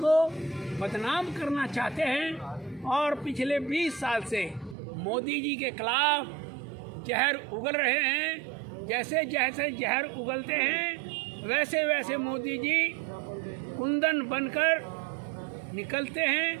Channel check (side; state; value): left; drops out; at 4.8 s